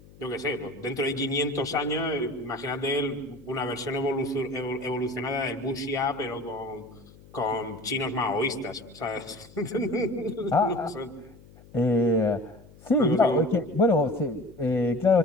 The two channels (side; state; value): left; noise; hum, 23 dB below the sound